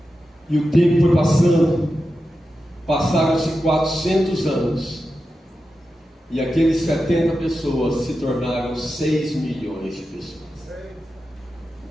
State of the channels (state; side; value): normal; both; correlation 0.91